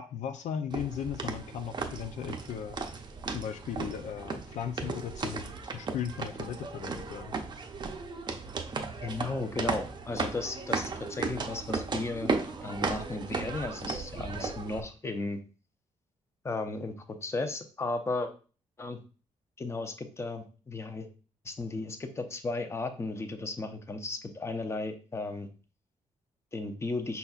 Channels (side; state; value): both; normal; correlation 0.56